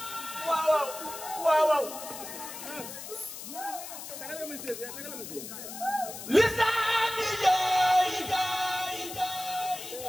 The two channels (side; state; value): left; noise; hiss, 10 dB below the sound